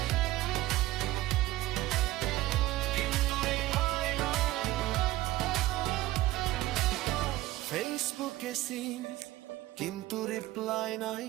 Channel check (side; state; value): left; quieter; 16.8 dB